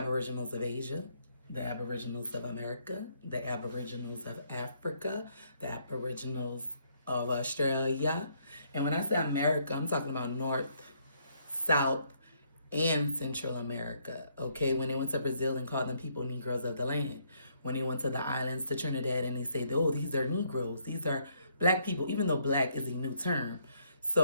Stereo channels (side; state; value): both; inverted; correlation -0.71